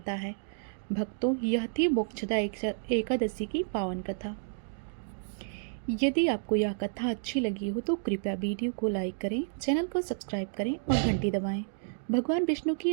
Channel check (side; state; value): left; silent; digital silence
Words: है। भक्तों, यह थी मोक्षदा एकादशी की पावन कथा। यदि आपको यह कथा अच्छी लगी हो तो कृपया वीडियो को लाइक करें, चैनल को सब्सक्राइब करें और घंटी दबाएं। भगवान विष्णु की